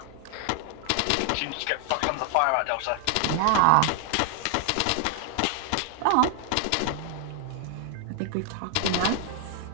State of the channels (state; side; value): different; both; correlation 0.00